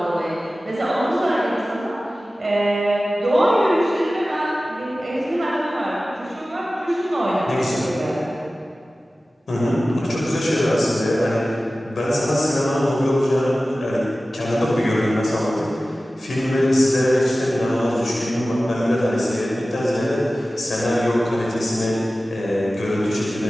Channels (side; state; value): both; normal; correlation 0.96